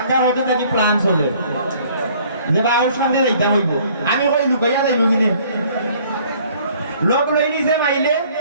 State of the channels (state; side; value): inverted; both; correlation -0.58